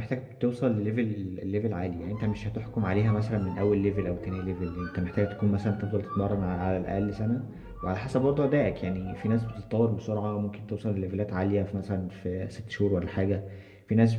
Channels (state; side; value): identical; both; correlation 1.00